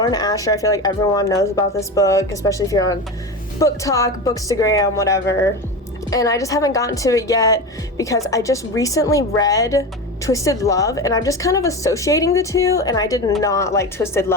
Asher. I feel like everyone knows about this book, especially if you're on Book Talk, Bookstagram, whatever. And I just haven't gotten to it yet because I just recently read Twisted Love, and I'm just kind of associating the two, and I did not like Twisted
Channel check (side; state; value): both; normal; correlation 0.24